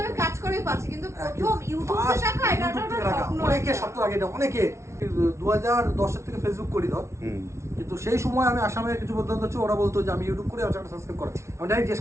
আমি কাজ করেই পাচ্ছি, কিন্তু প্রথম ইউটিউবে টাকা, এটা একটা স্বপ্ন। অনেকে স্বপ্ন লাগে এটা, অনেকে 2010 থেকে ফেসবুক করি ধর, হুম। কিন্তু সেই সময় আমি আসামের কিছু বন্ধু হচ্ছে, ওরা বলতো যে আমি ইউটিউব করে আমার চ্যানেল সাবস্ক্রাইব করে। আমি ডাইরেক্ট জিজ্ঞেস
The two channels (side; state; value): left; late; 0.13 ms